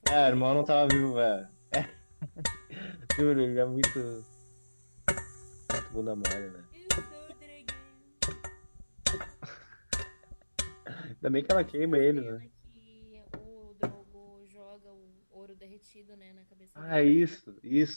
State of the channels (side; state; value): both; inverted; correlation -1.00